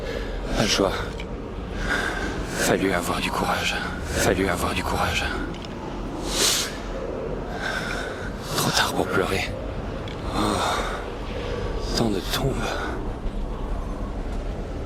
pas de joie. Fallu avoir du courage. Fallu avoir du courage. Trop tard pour pleurer. Oh, tant de tombes.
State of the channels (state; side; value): identical; both; correlation 1.00